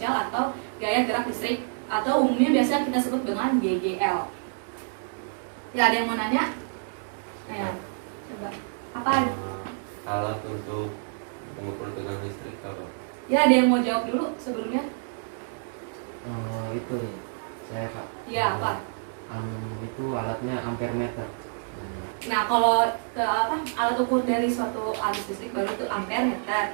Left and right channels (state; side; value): silent; left; digital silence